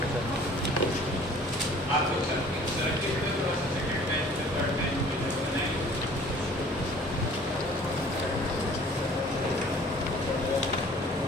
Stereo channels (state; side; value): normal; both; correlation 0.51